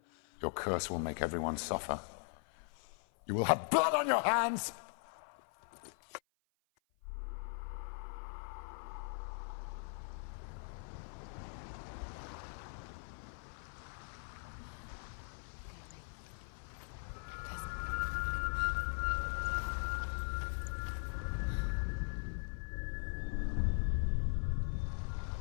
Your curse will make everyone suffer. You will have blood on your hands!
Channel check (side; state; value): right; silent; 51 dB below the other